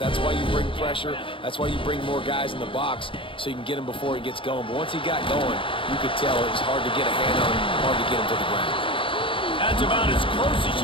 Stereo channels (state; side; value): late; right; 0.25 ms